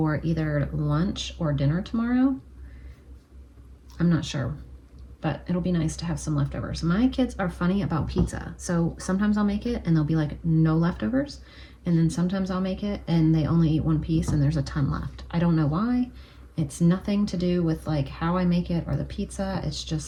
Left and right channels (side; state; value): both; identical; correlation 1.00